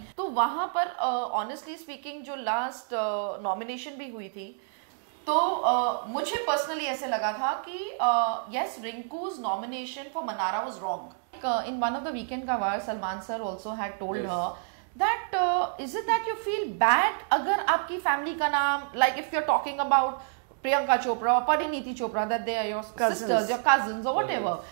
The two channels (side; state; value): left; silent; digital silence